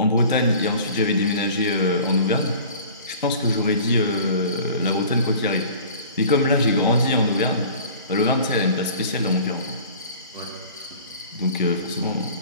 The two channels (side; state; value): both; inverted; correlation -0.44